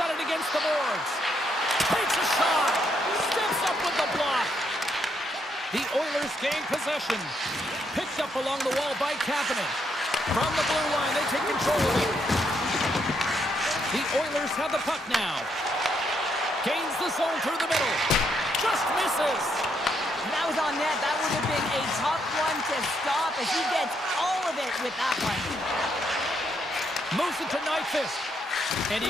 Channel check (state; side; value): normal; both; correlation 0.76